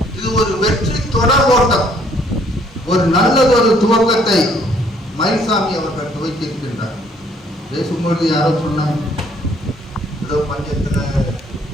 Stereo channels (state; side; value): normal; both; correlation 0.64